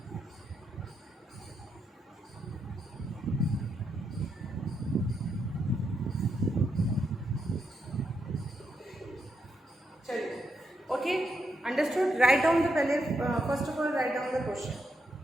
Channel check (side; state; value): both; normal; correlation 0.81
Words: Okay, understood? Write down the first of all write down the question.